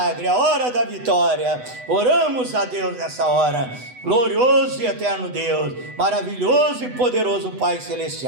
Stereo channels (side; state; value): left; late; 8.0 ms